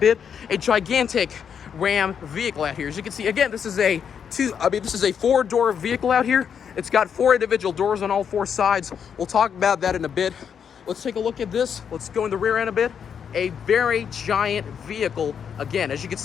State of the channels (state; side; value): quieter; right; 7.5 dB